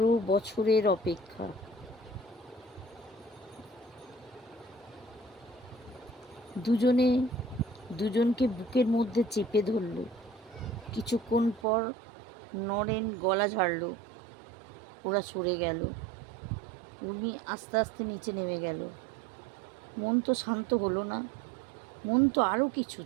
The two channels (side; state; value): left; drops out; at 11.7 s